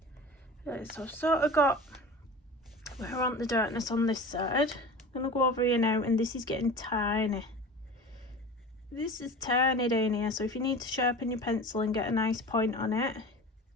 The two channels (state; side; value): normal; both; correlation 0.36